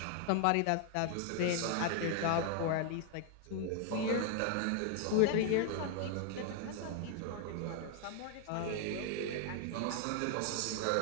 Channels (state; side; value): different; both; correlation 0.00